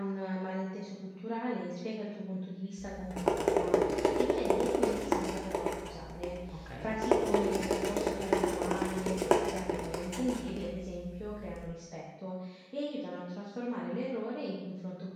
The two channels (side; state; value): both; identical; correlation 1.00